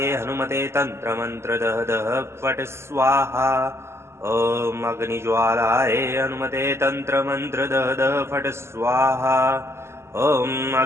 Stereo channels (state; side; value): late; left; 0.13 ms